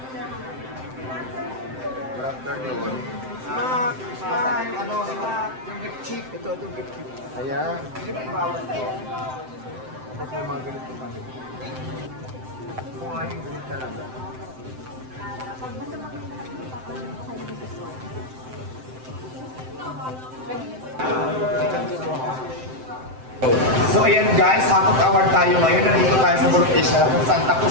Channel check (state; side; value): late; left; 7.8 ms